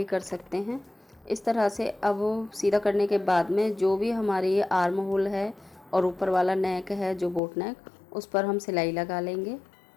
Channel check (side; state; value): right; drops out; at 7.4 s